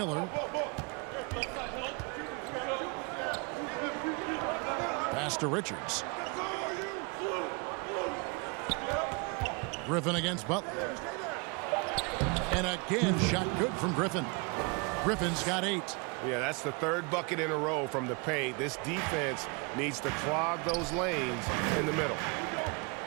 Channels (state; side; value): quieter; left; 31.4 dB